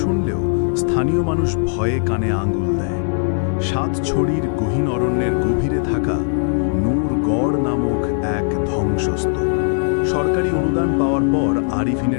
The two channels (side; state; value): right; silent; 67 dB below the other